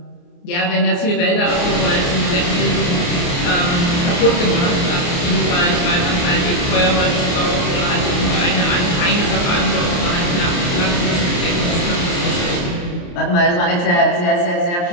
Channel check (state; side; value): late; right; 28 ms